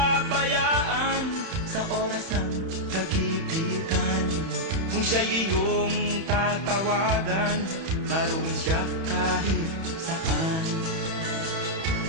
sa oras ng kagipitan. Kung siya'y iyong tatawagan, naroon siya kahit saan.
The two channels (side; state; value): left; late; 31 ms